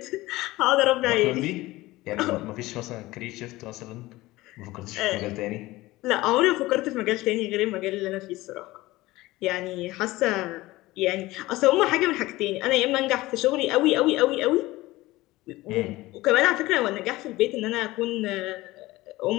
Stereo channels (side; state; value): right; quieter; 18.9 dB